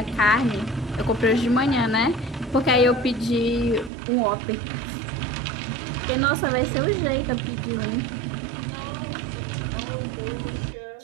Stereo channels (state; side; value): drops out; left; at 3.9 s